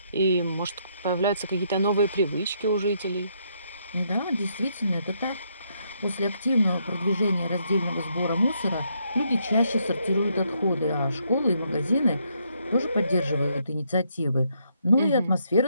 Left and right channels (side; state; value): both; inverted; correlation -0.74